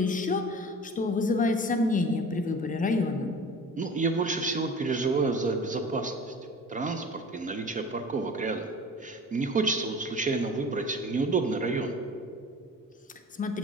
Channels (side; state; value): both; normal; correlation 0.40